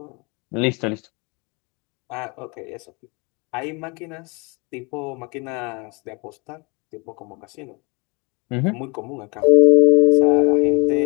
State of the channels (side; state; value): right; quieter; 29.4 dB